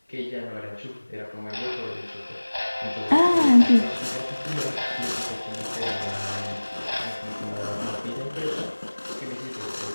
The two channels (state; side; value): inverted; both; correlation -1.00